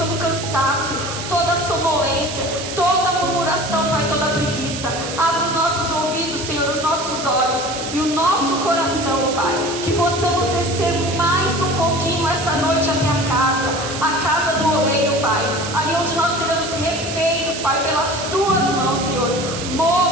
o cansaço, toda a sonolência, toda a murmuração, Pai, toda a preguiça. Abra os nossos ouvidos, Senhor, os nossos olhos e o nosso coração, Pai. Que possamos descer mais um pouquinho essa noite até a casa do oleiro, Pai. Ali onde nós seremos refeitos, Pai, pelas Tuas mãos, Senhor.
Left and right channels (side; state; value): right; noise; hiss, 8 dB below the sound